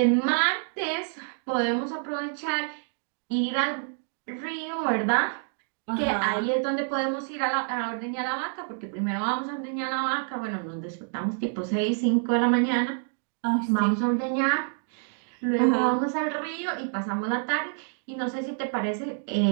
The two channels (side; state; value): left; silent; 57 dB below the other